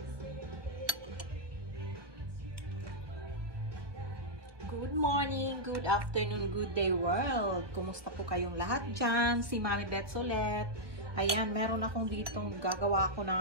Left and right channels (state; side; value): late; left; 1.1 ms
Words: morning, good afternoon, good day world. Kumusta po kayong lahat dyan? Si Mami Bets ulit. Ayan, meron akong dito gagawa ko